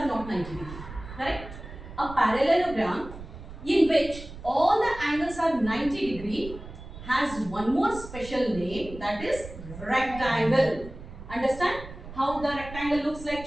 not 90 degree. Correct? A parallelogram in which all the angles are 90 degree has one more special name, that is rectangle. Understand how the rectangle looks like,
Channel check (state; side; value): noise; right; rumble, 13 dB below the sound